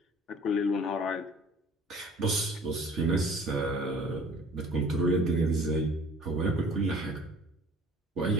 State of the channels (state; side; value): normal; both; correlation 0.50